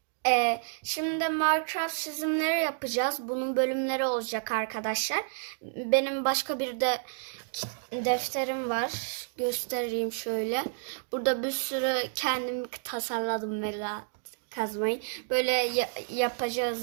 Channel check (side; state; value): left; silent; digital silence